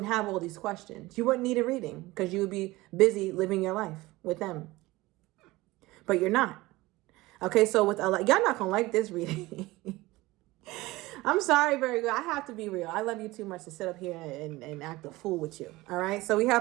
have all these questions. You wouldn't need a reading because you would be busy living your life with them. But you're not. Okay, so with y'all not going to like this reading. I'm sorry, Virgo. I have to be real. I love you too much to sit up here and act a fool with you. All right, so we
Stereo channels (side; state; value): left; quieter; 19.8 dB